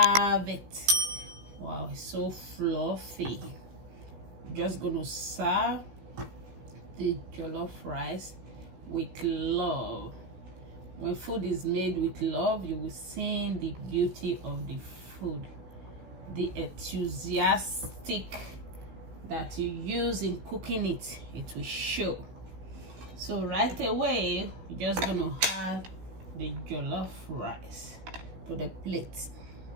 it. Wow, it's so fluffy. Just gonna serve the jollof rice with love. When food is made with love, you will see the beauty of the food, the enthusiastic that you use in cooking it. It will show. So right away, we're just gonna add the jollof rice to the plate.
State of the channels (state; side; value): late; left; 16 ms